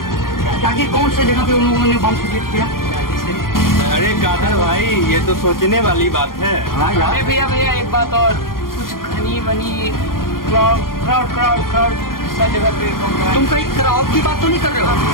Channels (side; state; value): right; late; 0.91 ms